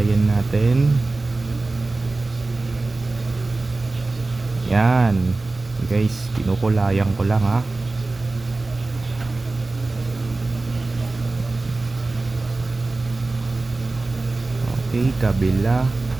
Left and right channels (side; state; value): left; quieter; 3.3 dB